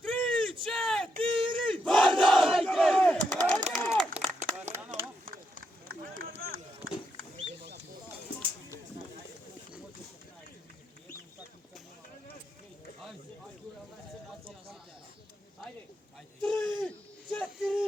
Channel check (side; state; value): both; normal; correlation 0.81